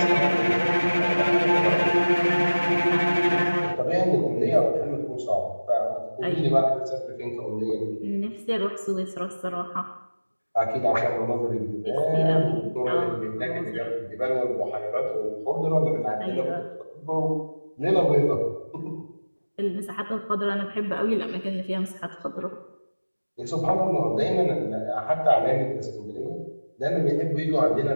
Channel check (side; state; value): both; inverted; correlation -1.00